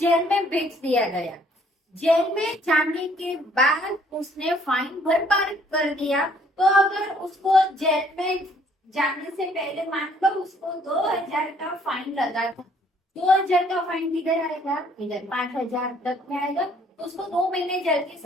में भेज दिया गया, जेल में जाने के बाद उसने फाइन भरपाई कर दिया, तो अगर उसको जेल में जाने से पहले मान लो उसको 2,000 का फाइन लगा था, 2,000 का फाइन किधर आएगा, इधर 5,000 तक में आएगा, तो उसको 2 महीने जेल की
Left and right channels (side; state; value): both; normal; correlation 0.62